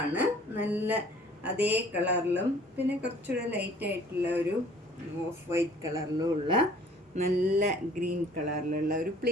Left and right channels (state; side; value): normal; both; correlation 0.54